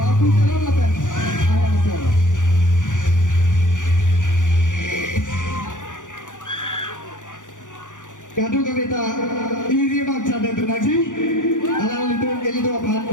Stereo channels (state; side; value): late; right; 0.87 ms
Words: babu teron laban ahemasor Kadu kavita iri bang chade tunaji alanglitum elido phan